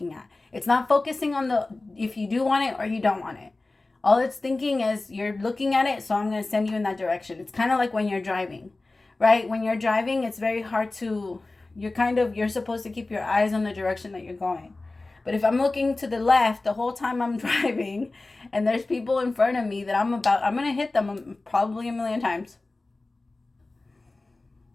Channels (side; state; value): right; quieter; 3.2 dB